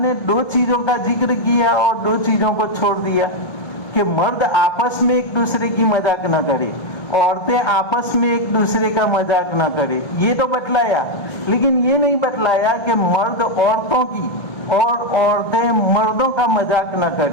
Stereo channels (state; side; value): late; right; 1.3 ms